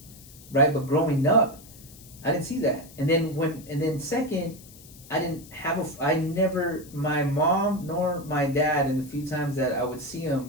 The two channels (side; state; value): left; noise; hiss, 21 dB below the sound